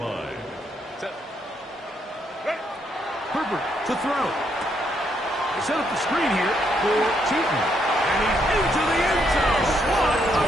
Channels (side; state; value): both; normal; correlation 0.75